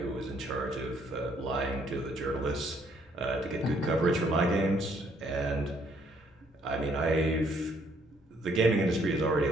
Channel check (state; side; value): normal; both; correlation 0.67